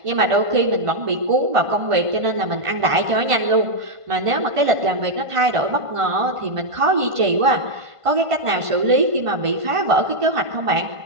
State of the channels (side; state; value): left; late; 1.5 ms